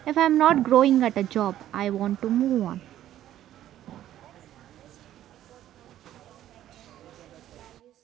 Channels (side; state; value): left; quieter; 12.4 dB